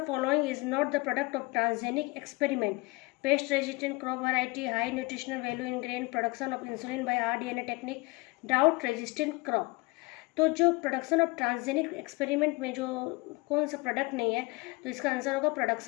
following is not the product of transgenic experiment? Pest resistant crop variety, high nutritional value in grain, production of insulin by rDNA technique, drought resistant crop. तो जो production of transgenic experiment में जो कौन सा product नहीं है, तो इसका आंसर होगा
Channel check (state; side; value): quieter; right; 25.0 dB